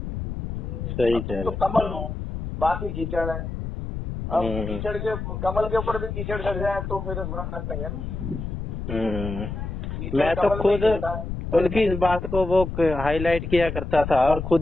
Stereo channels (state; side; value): noise; left; rumble, 6 dB below the sound